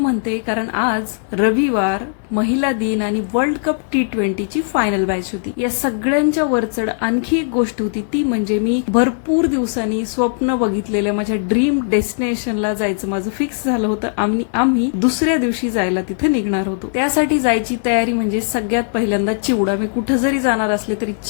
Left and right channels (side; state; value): right; silent; digital silence